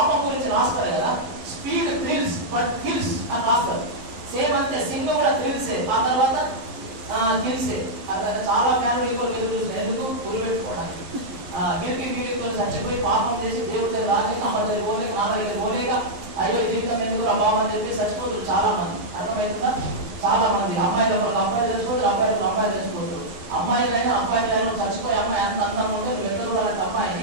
గురించి రాస్తారు కదా, స్పీడ్ థ్రిల్స్ బట్ కిల్స్ అని రాస్తారు. సేమ్ అంతే, సినిమా కూడా థ్రిల్సే. ఆ తర్వాత చేసి దేవుడి దగ్గర రాలేక, అమ్మ దగ్గర పోలేక, నాన్న దగ్గర పోలేక, అయ్యో జీవితం ఎందుకు బాబు అని చెప్పి చచ్చిపోతారు చాలా మంది. అర్థమవుతుందా? చాలా మంది అమ్మాయిలు అబ్బాయిలు చచ్చిపోతారు, అబ్బాయిలు అమ్మాయిలు చచ్చిపోతారు. అమ్మాయిలైనా అబ్బాయిలైనా చచ్చిపోయి అమ్మాయి అంత అందంగా ఉంటే నువ్వు ఎక్కడ చూడాలంటే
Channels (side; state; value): left; late; 11 ms